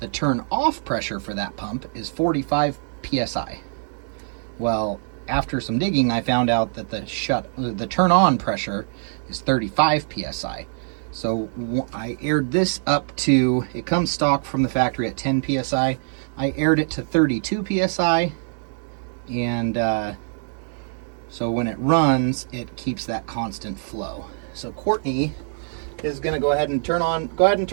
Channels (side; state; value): left; silent; digital silence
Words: turn-off pressure for that pump is 45 PSI. Well, after some digging, I found out that the turn-on pressure is 35 PSI. So I aired this up to, it comes stock from the factory at 10 PSI. I aired it to 32 PSI, and so when it runs, it keeps that constant flow. So Courtney is going to go ahead and turn on